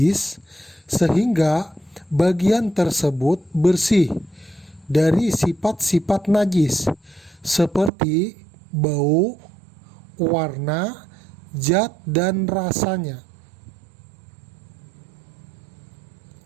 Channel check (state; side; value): drops out; left; at 7.9 s